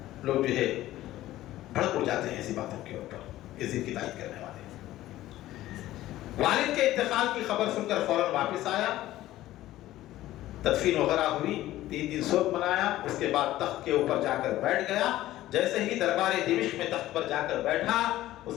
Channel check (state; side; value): quieter; right; 15.1 dB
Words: لوگ جو ہے بھڑک اڑ جاتے ہیں ایسی باتوں کے اوپر، یزید کی تائید کرنے والے۔ والد کے انتقال کی خبر سن کر فوراً واپس آیا، تدفین وغیرہ ہوئی، 3 دن سوگ منایا، اس کے بعد تخت کے اوپر جا کر بیٹھ گیا۔ جیسے ہی دربار دمشق میں تخت پر جا کر بیٹھا، اس